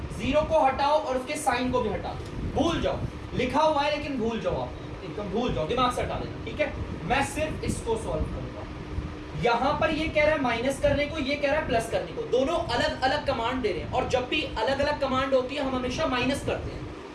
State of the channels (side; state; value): both; identical; correlation 1.00